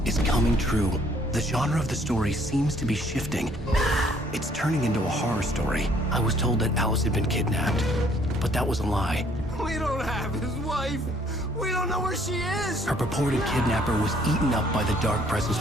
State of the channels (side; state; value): both; normal; correlation 0.62